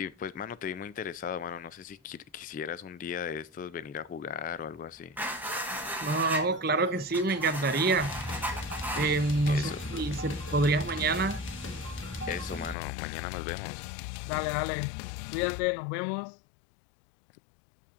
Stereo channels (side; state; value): right; drops out; at 12.8 s